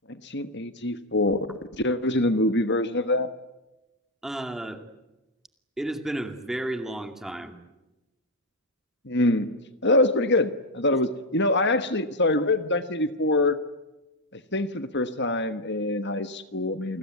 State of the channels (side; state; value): both; normal; correlation 0.04